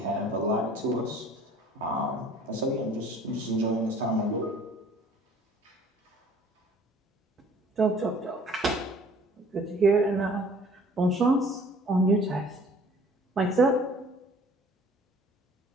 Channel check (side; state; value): both; normal; correlation 0.52